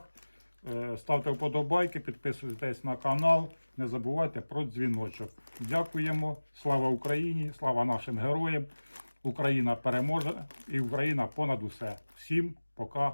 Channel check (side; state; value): both; inverted; correlation -1.00